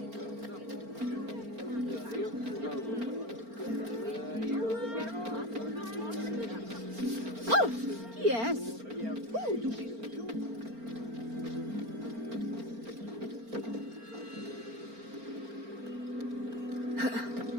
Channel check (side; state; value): left; late; 4.4 ms